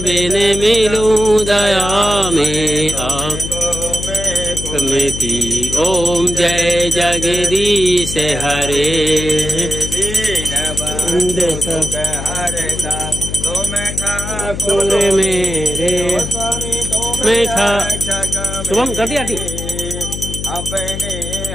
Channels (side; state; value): left; noise; hum, 7 dB below the sound